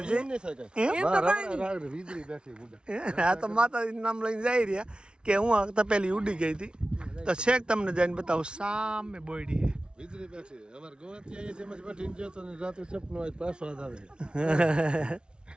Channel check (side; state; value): left; late; 0.056 ms